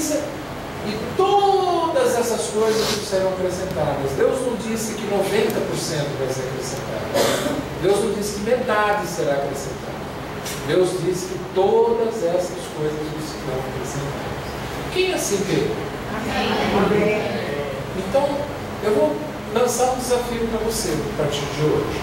e todas essas coisas que serão acrescentadas. Deus não disse que 90% vai ser acrescentado. Deus não disse que metade será acrescentada. Deus disse que todas essas coisas serão acrescentadas. Quem assim crê? Amém. Então, eu vou lançar um desafio para você a partir de hoje.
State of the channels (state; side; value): identical; both; correlation 1.00